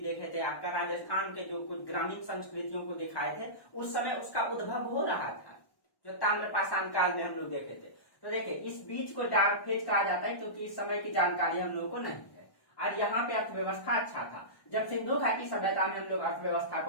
देखे थे, आपका राजस्थान के जो कुछ ग्रामीण संस्कृतियों को दिखाए थे, उस समय उसका उद्भव हो रहा था, जो ताम्रपाषाण काल में हम लोग देखे थे। तो देखिए, इस बीच को डार्क फेज कहा जाता है क्योंकि इस समय की जानकारी हम लोगों को नहीं है। और यहाँ पे अर्थव्यवस्था अच्छा था। जब सिंधु घाटी सभ्यता में हम लोग अर्थव्यवस्था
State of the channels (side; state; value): right; late; 1.1 ms